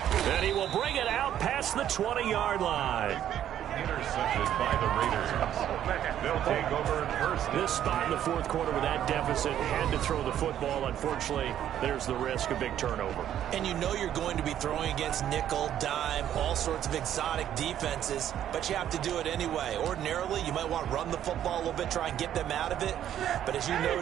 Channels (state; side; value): quieter; left; 10.8 dB